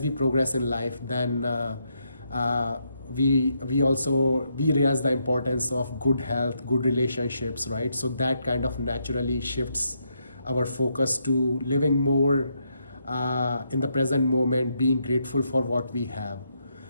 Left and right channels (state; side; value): inverted; both; correlation -0.78